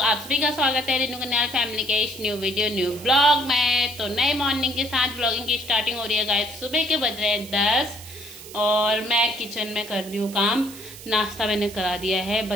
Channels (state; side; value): noise; right; hiss, 15 dB below the sound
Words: आप सभी का स्वागत है रेनू कन्याल फैमिली के इस न्यू वीडियो न्यू ब्लॉग में। तो नए मॉर्निंग के साथ ब्लॉगिंग की स्टार्टिंग हो रही है गाइस। सुबह के बज रहे हैं 10 और मैं किचन में कर रही हूँ काम। नाश्ता मैंने करा दिया है,